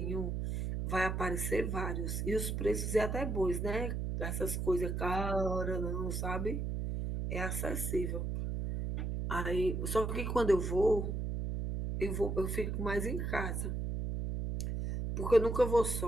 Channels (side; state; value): right; noise; hum, 2 dB below the sound